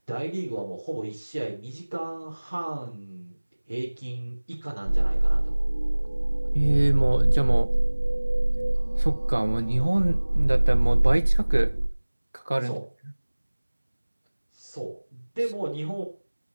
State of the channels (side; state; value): both; inverted; correlation -1.00